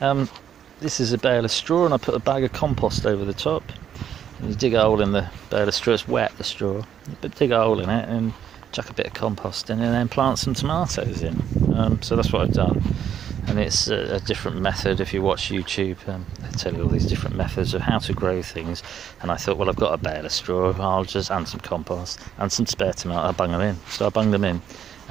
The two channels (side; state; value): left; quieter; 9.2 dB